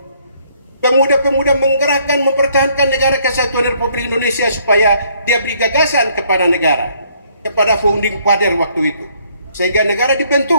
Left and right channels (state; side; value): inverted; both; correlation -0.65